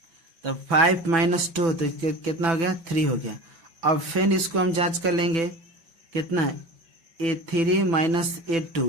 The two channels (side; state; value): left; late; 6.0 ms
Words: तो 5 माइनस 2, तो कितना हो गया 3 हो गया। अब फिर इसको हम जांच कर लेंगे, कितना A3 माइनस